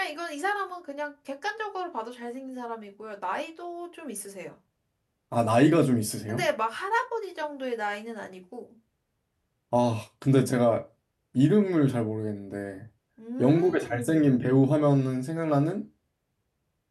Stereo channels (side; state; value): both; identical; correlation 1.00